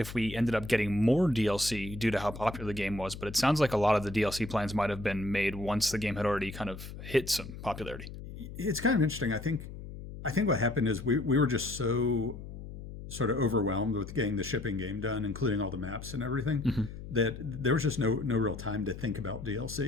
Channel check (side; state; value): left; noise; hum, 11 dB below the sound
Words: we ended up getting more DLC due to how popular the game was, but it sounds like a lot of the DLC plans might have been made once the game had already kind of hit some popularity. It's kind of interesting. I think what happened is we were just so sort of overwhelmed with getting the shipping game done, including all the maps and everything, that there was just no real time to think about